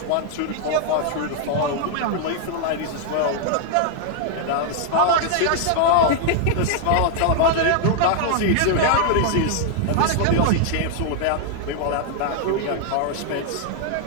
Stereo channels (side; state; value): both; different; correlation 0.00